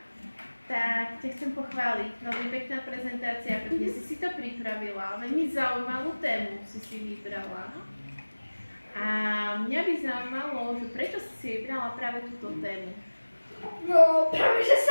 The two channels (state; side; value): inverted; both; correlation -1.00